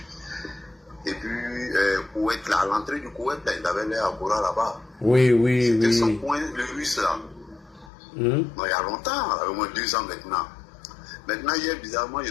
Et puis, Koweït, là, à l'entrée du Koweït, là, il avait l'air à Bora là-bas. Oui. C'était son point, le russe là. Non, il y a longtemps, au moins 2 ans maintenant. Maintenant, hier, bizarrement, je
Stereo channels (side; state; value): right; drops out; at 7.9 s